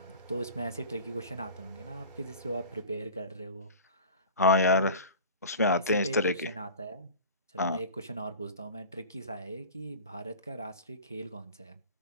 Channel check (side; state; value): both; inverted; correlation -0.39